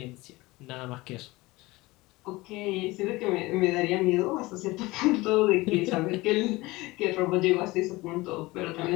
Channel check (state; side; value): quieter; right; 21.0 dB